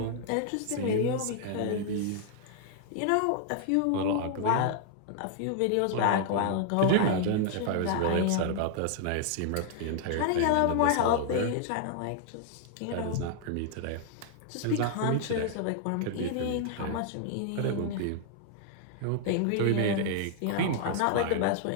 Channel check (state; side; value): different; both; correlation 0.00